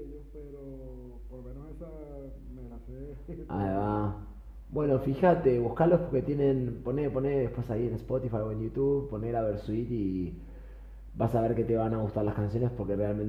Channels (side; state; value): both; identical; correlation 1.00